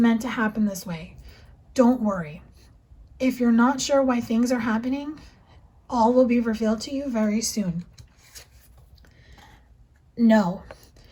to happen this way. Don't worry. If you're not sure why things are happening, all will be revealed to you very soon. No.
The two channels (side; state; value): both; identical; correlation 1.00